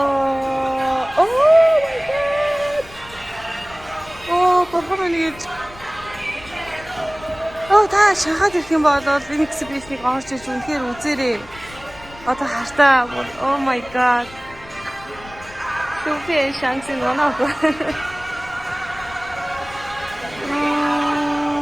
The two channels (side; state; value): left; noise; rumble, 20 dB below the sound